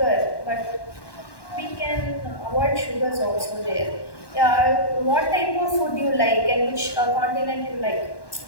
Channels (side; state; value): right; late; 1.1 ms